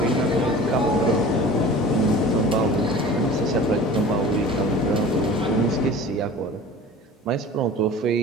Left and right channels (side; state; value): both; normal; correlation 0.40